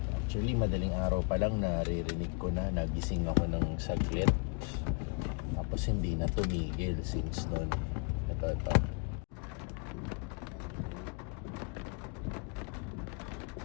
Actually madaling araw pa lang naririnig ko na, nagising ako ng saglit. Tapos hindi na tumigil since noon. Ito.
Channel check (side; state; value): right; quieter; 35.0 dB